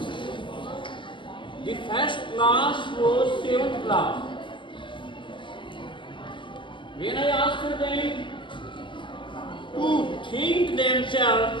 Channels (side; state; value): right; late; 0.24 ms